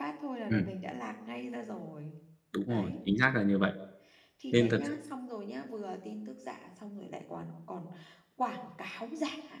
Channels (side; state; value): both; identical; correlation 1.00